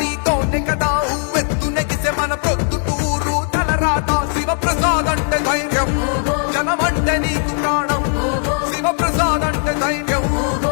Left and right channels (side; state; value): right; silent; 58 dB below the other